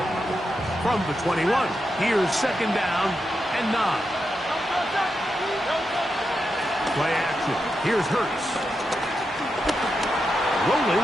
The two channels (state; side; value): normal; both; correlation 0.87